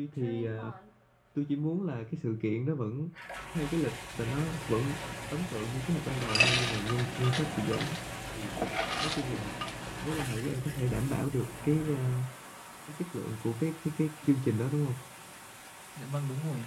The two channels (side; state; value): both; identical; correlation 1.00